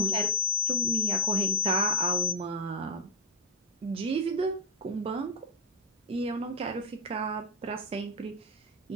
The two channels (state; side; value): normal; both; correlation -0.13